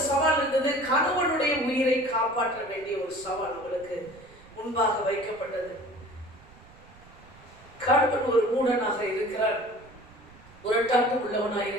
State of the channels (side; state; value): right; noise; rumble, 24 dB below the sound